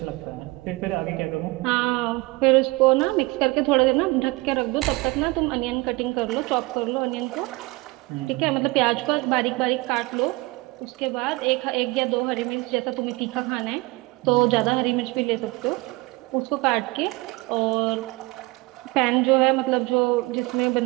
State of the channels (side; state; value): left; quieter; 23.2 dB